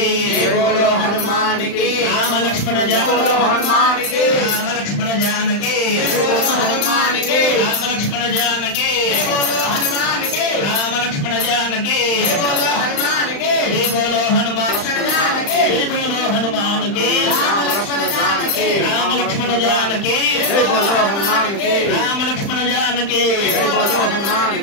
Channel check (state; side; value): late; right; 35 ms